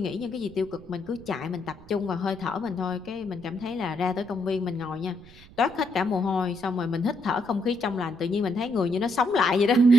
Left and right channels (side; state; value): right; noise; rumble, 21 dB below the sound